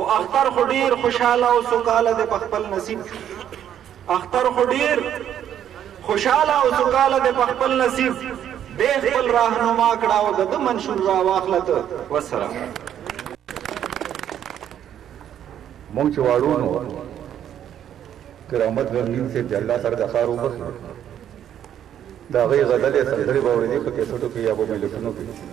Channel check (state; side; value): quieter; left; 10.1 dB